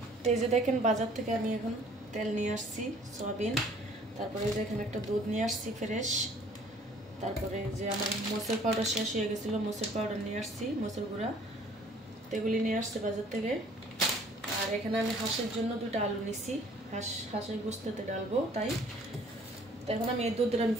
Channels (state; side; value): normal; both; correlation 0.55